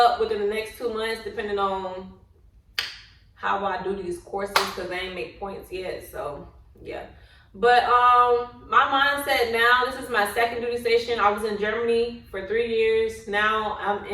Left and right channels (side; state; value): both; identical; correlation 1.00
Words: within the next 2 months, depending on how I do these courses, because I ain't make points yet. So yeah, but my mindset now, this is my second duty station. I was in Germany for 3 years. Now I'm